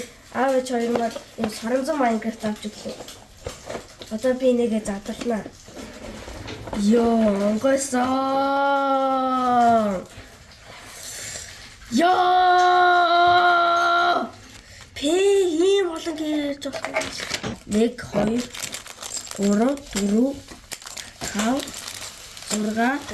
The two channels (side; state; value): both; identical; correlation 1.00